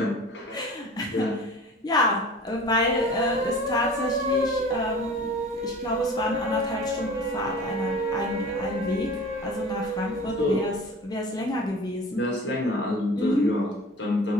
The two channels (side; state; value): both; normal; correlation 0.40